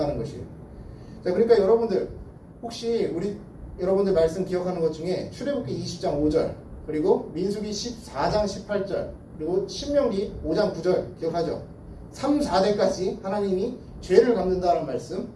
것이에요. 자, 그러니까 여러분들 혹시 여러분들 말씀 기억하는 것 중에 출애굽기 20장 5절 그리고 민수기 14장 18절 그리고 신명기 5장 9절 기억하죠? 3, 4대까지 하나님이 죄를 갚는다는 말씀.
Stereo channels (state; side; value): identical; both; correlation 1.00